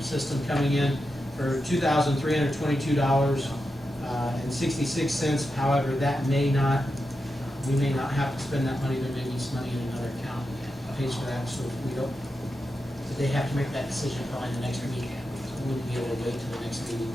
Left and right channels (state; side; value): normal; both; correlation 0.88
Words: system coming in for $2,322.66. However, we may not have to spend that money. There may be some money in another account that pays for that. So if we don't, they have to make that decision probably the next meeting. So we wouldn't be able to wait till the next meeting.